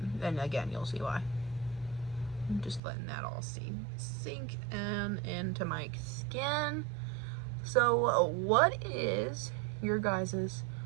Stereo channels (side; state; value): left; drops out; at 2.8 s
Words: And again, you'll see why. I'm just letting that all sink in into my skin. So what is your guys'